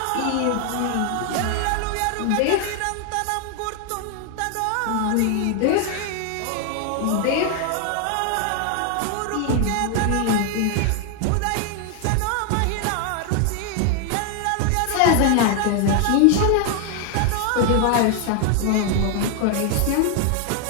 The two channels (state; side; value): different; both; correlation 0.00